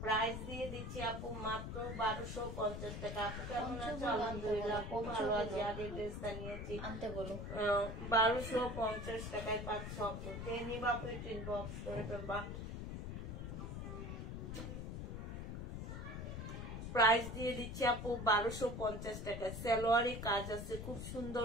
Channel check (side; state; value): left; noise; rumble, 6 dB below the sound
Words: প্রাইস দিয়ে দিচ্ছি আপু মাত্র 1250 টাকা। আপু কেমন আছো? আলহামদুলিল্লাহ আপু ভালো আছি। আগে ড্রেসটা নিয়েছি, আনতে বলো। 1250 টাকায় পাচ্ছ আপু। যে নিবা ইনবক্স করে ফেলবা। প্রাইস দিয়ে দিচ্ছি আপু 1250 টাকা। সালোয়ারে কাজ আছে, খুব সুন্দর